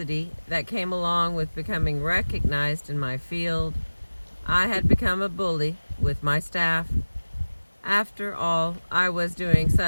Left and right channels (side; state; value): both; inverted; correlation -1.00